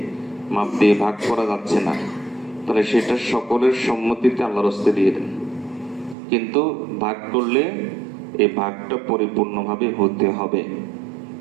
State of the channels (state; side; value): drops out; left; at 6.2 s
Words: মাপ দিয়ে ভাগ করা যাচ্ছে না, তাহলে সেটা সকলের সম্মতিতে আল্লাহর হস্তে দিয়ে দেন। কিন্তু ভাগ করলে এই ভাগটা পরিপূর্ণভাবে হতে হবে,